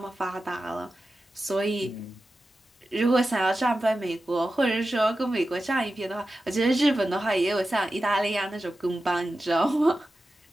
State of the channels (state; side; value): normal; both; correlation 0.93